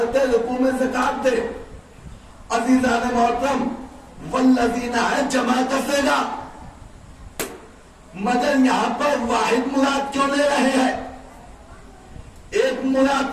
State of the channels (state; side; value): identical; both; correlation 1.00